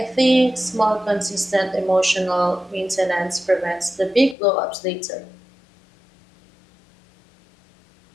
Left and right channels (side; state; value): right; drops out; at 4.4 s